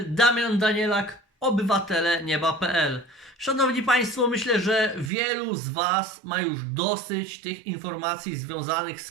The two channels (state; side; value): drops out; left; at 5.1 s